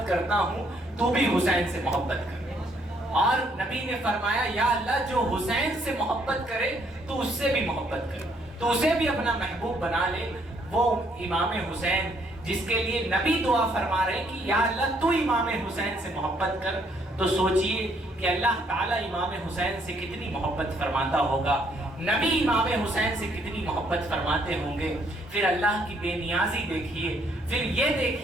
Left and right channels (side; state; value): both; normal; correlation 0.68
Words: کرتا ہوں، تو بھی حسین سے محبت کر۔ اور نبی نے فرمایا یا اللہ جو حسین سے محبت کرے تو اس سے بھی محبت کرے، تو اسے بھی اپنا محبوب بنا لے۔ وہ امام حسین جس کے لیے نبی دعا فرما رہے کہ یا اللہ تو امام حسین سے محبت کر، تو سوچئے کہ اللہ تعالیٰ امام حسین سے کتنی محبت فرماتا ہوگا، نبی امام حسین سے کتنی محبت فرماتے ہوں گے۔ پھر اللہ کی بے نیازی دیکھیے، پھر یہ